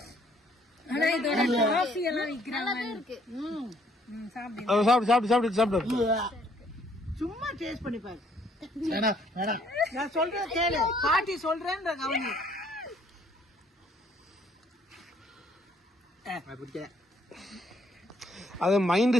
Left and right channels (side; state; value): both; normal; correlation 0.64